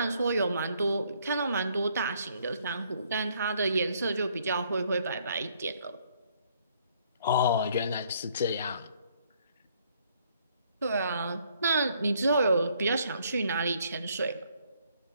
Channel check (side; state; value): both; inverted; correlation -0.66